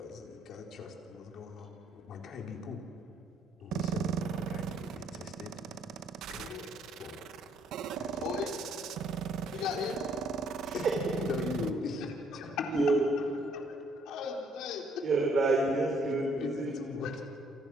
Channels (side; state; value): both; normal; correlation 0.66